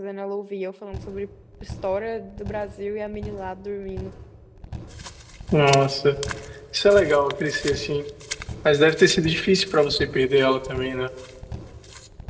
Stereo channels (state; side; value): identical; both; correlation 1.00